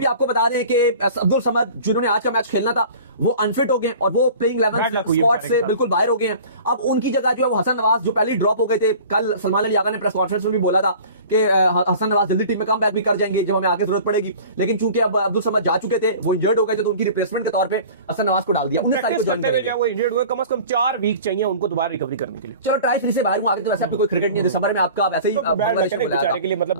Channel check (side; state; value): both; inverted; correlation -0.43